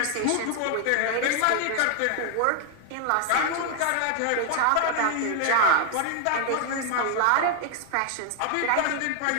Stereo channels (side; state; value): both; different; correlation 0.00